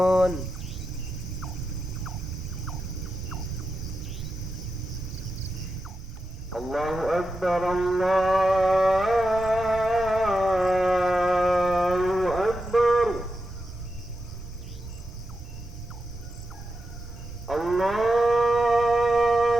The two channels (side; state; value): both; normal; correlation 0.89